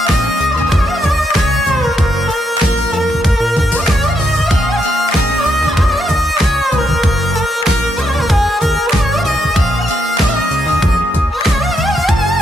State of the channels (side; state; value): both; normal; correlation 0.79